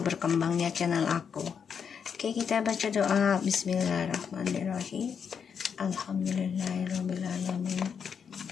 berkembangnya channel aku. Oke, kita baca doa. Bismillahirrahmanirrahim. Alhamdulillahirrahmanirrahim.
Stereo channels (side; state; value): right; quieter; 6.9 dB